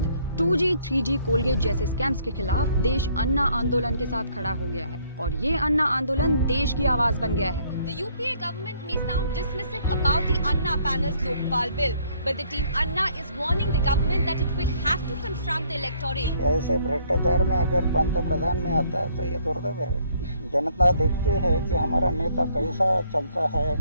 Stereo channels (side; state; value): both; inverted; correlation -0.64